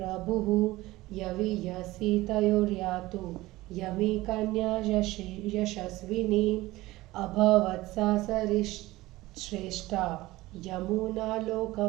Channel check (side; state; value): left; quieter; 18.5 dB